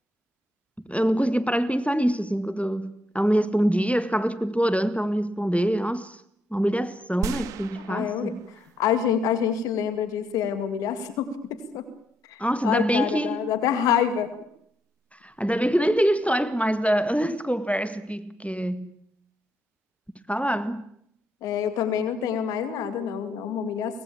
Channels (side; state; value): both; normal; correlation 0.77